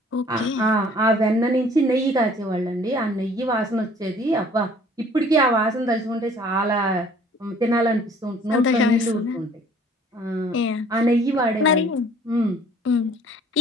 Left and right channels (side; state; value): both; normal; correlation 0.54